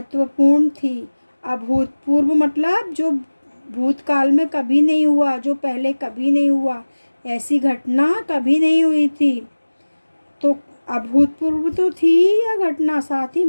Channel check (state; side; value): inverted; both; correlation -1.00